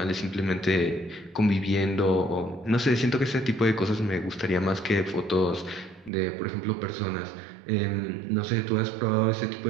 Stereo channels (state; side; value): drops out; left; at 6.1 s